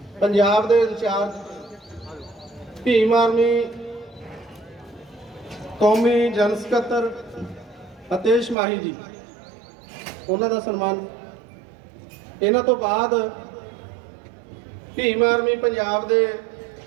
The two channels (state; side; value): drops out; left; at 8.6 s